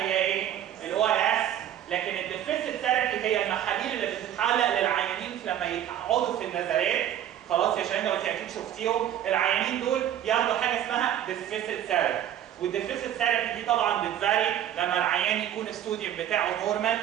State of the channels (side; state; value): left; quieter; 11.0 dB